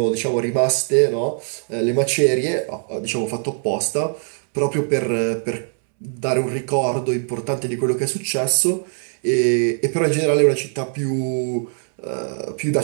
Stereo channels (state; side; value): silent; left; 65 dB below the other